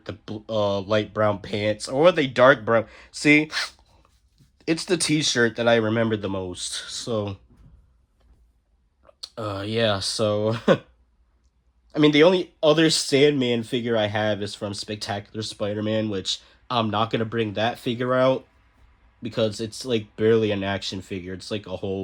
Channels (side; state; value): both; identical; correlation 1.00